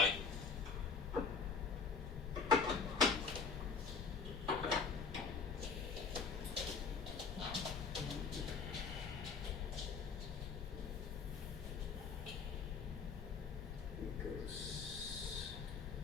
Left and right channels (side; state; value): right; quieter; 5.2 dB